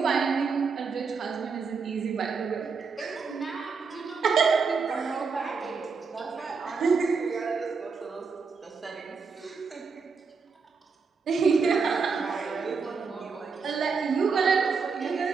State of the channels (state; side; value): quieter; left; 5.2 dB